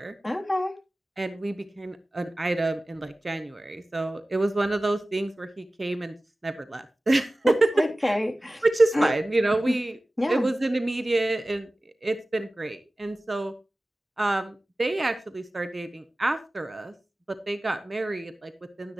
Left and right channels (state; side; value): normal; both; correlation 0.96